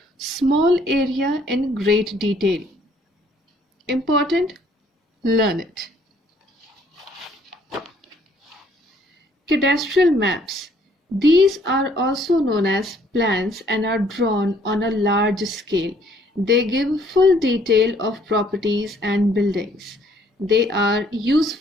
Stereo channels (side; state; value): both; normal; correlation 0.63